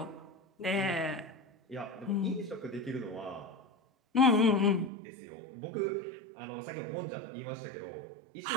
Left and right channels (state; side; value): drops out; left; at 4.9 s